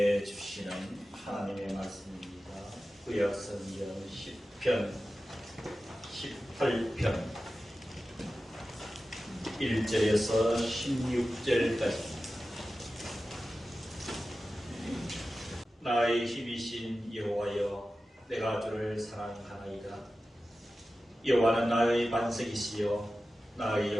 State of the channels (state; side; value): normal; both; correlation 0.94